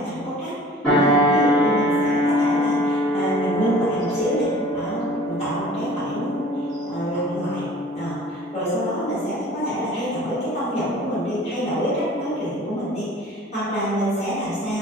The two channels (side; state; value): both; normal; correlation 0.47